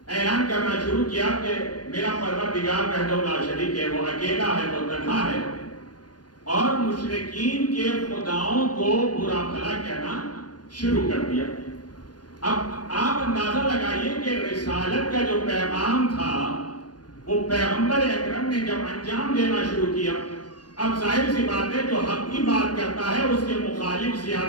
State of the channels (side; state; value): right; late; 0.69 ms